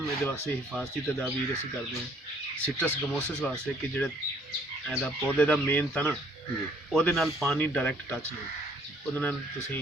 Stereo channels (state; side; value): normal; both; correlation 0.61